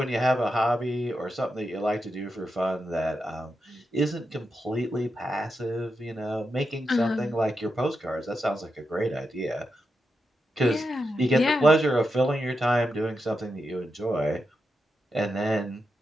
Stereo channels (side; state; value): both; normal; correlation 0.86